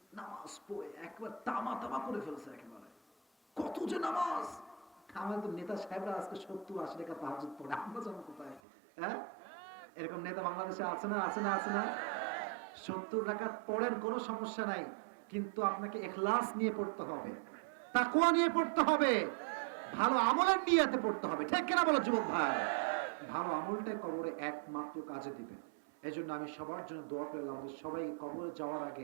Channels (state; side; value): drops out; left; at 8.6 s